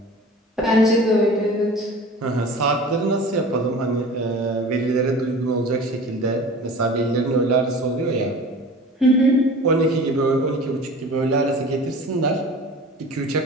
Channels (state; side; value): normal; both; correlation 0.40